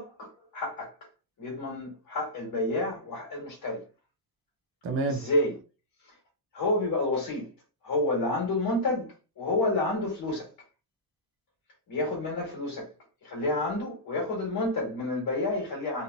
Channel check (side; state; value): both; normal; correlation -0.15